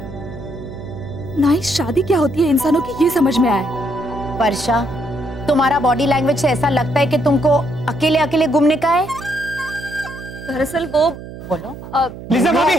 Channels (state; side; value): noise; right; hum, 13 dB below the sound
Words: ना ही शादी क्या होती है इंसानों की ये समझ में आया है। वर्षा, तुम्हारा बॉडी लैंग्वेज से ऐसा लगता है कि तुमको अकेले अकेले घूमने का है। दरअसल वो बोलो। लीजा भाभी,